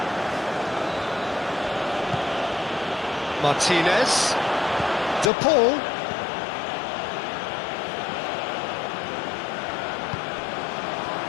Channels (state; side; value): drops out; right; at 5.3 s